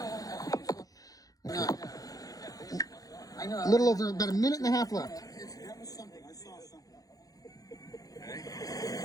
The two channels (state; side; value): late; right; 0.17 ms